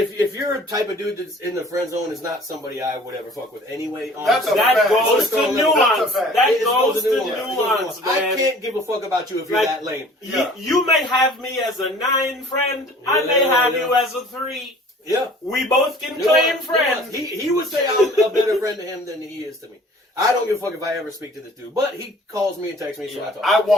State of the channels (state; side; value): normal; both; correlation 0.49